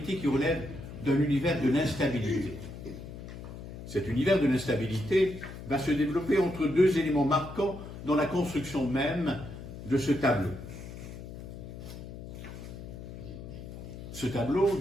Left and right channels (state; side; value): noise; left; hum, 11 dB below the sound